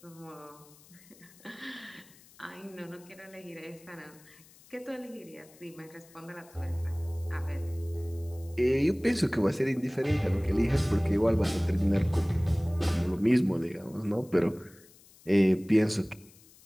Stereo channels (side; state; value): left; noise; hiss, 25 dB below the sound